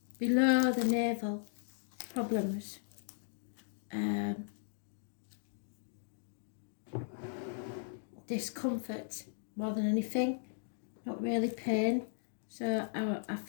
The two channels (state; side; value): silent; right; digital silence